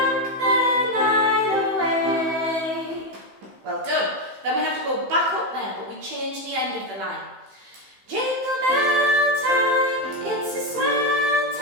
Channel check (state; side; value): late; left; 15 ms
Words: the night away. Well done. Then we have to go back up there, but we change the end of the line. Jingle bell time, it's a swell